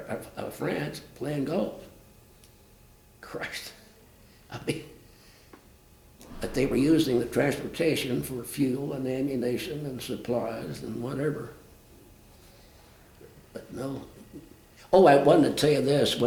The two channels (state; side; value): identical; both; correlation 1.00